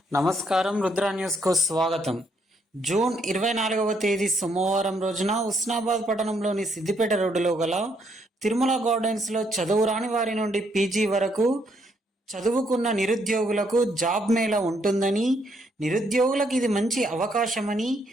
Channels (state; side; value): normal; both; correlation 0.72